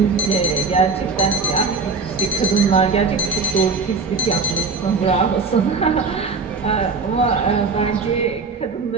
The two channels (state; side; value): quieter; left; 4.5 dB